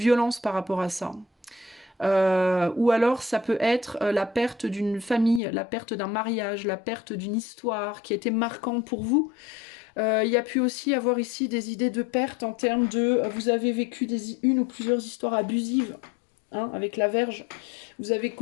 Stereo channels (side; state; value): right; drops out; at 5.4 s